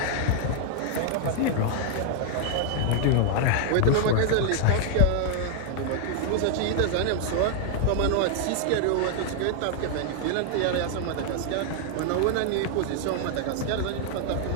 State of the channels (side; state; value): both; different; correlation 0.00